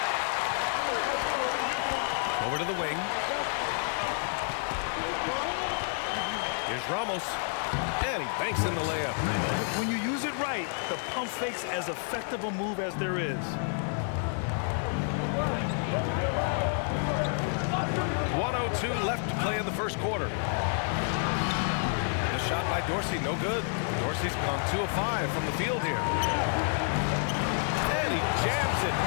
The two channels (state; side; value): silent; right; 58 dB below the other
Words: Over to the wing. Here's Ramos. And he banks in the layup. When you use it right, the pump fake's as effective a move as there is. 1:02 left to play in the first quarter. The shot by Dorsey, no good. Dorsey's gone 2 of 5 from the field here. And he jams it